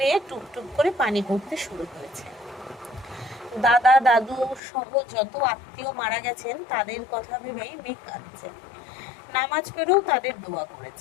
টুপটুপ করে পানি পড়তে শুরু করেছে। দাদা দাদু সহ যত আত্মীয় মারা গেছেন তাদের কথা ভেবেই মেঘ কাঁদছে। নামাজ পড়েও তাদের দোয়া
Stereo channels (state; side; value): drops out; right; at 4.6 s